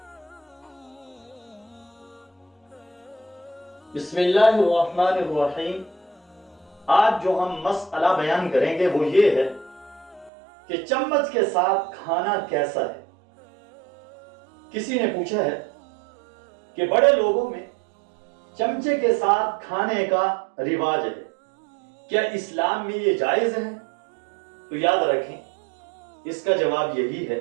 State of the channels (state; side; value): drops out; left; at 10.3 s